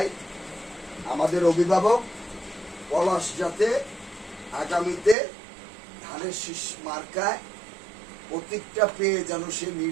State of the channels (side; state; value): left; drops out; at 5.2 s